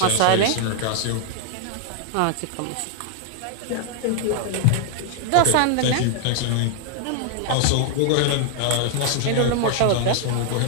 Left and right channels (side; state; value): both; different; correlation 0.00